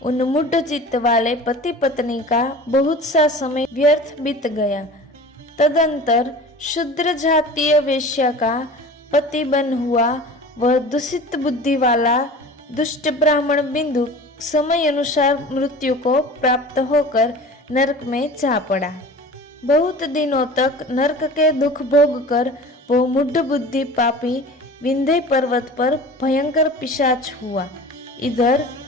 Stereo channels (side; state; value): both; normal; correlation 0.39